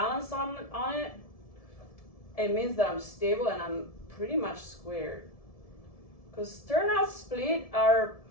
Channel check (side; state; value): right; late; 1.7 ms